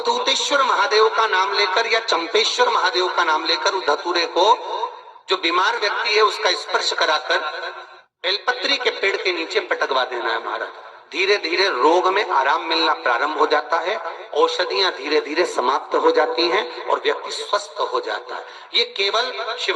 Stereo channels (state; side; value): identical; both; correlation 1.00